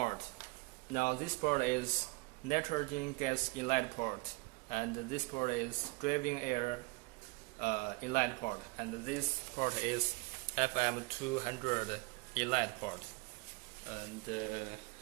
Now this port is nitrogen gas inlet port, and this port is driving air inlet port, and this port is FM200 inlet port. And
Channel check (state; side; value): quieter; left; 25.6 dB